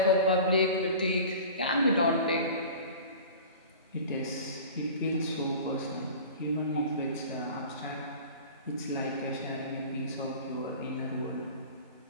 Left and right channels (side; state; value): both; inverted; correlation -0.39